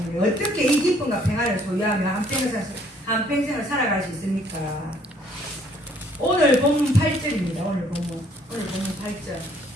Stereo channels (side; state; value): both; normal; correlation 0.62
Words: 어떻게 이 기쁨과 평안을 소유하면 한평생을 살아갈 수 있습니까? 오늘 본문 8절입니다. 오늘 본문 8절.